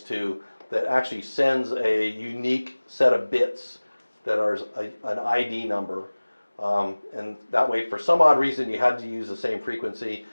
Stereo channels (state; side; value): inverted; both; correlation -1.00